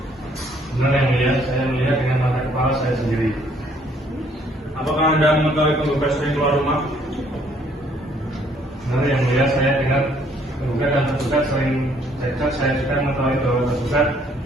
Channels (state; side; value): normal; both; correlation 0.64